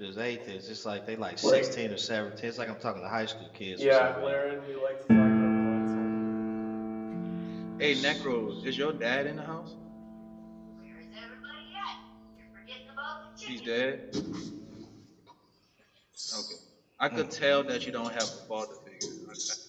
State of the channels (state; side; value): identical; both; correlation 1.00